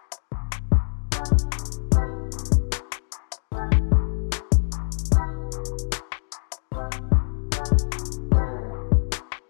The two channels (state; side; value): silent; right; digital silence